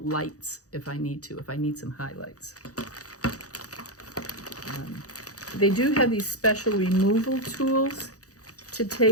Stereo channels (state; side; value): late; right; 0.66 ms